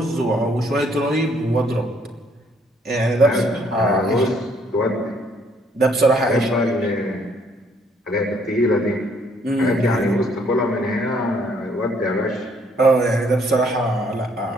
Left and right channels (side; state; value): both; normal; correlation 0.65